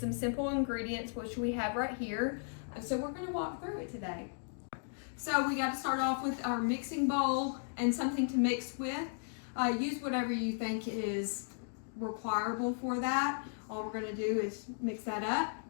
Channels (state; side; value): silent; right; digital silence